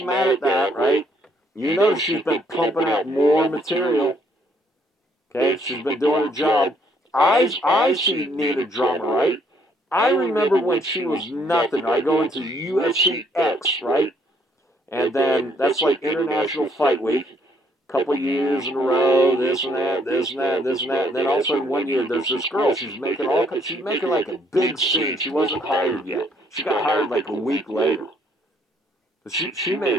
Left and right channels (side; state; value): both; normal; correlation 0.67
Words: mad at that, right? You know she's been pumping out more material. Okay? She's been doing her job. I see Nina drama, right? I remember when she was nothing. I go into UFC X, right? And then that's like International Fight Week. Couple years in a row, this and that, this and that, this and that. And then all of a sudden one year there's this girl, she's making like a big scene. She wasn't hired yet. She got hired like a week later. But she made